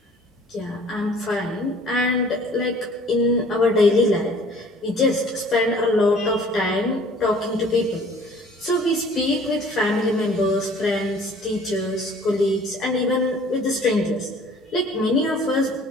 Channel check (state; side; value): normal; both; correlation 0.52